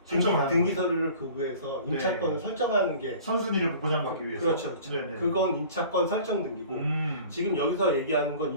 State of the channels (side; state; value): both; inverted; correlation -0.45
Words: 등기 서류를 교부해서 임차권을 설정하는 게 선순위를 보장받기 위해서. 그렇죠. 네네. 그건 임차권 설정 등기고 지금 여기서 얘기하는 건